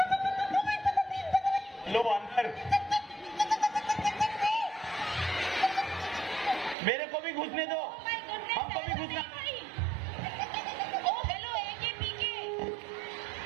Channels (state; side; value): drops out; left; at 6.8 s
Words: लो अंदर मेरे को भी घुसने दो। Oh my goodness, हमको भी ऐसा घुसना। नहीं भाई। Oh hello, AK PK।